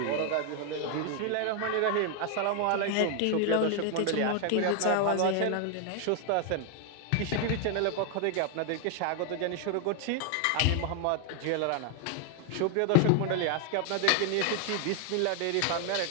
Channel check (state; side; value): different; both; correlation 0.00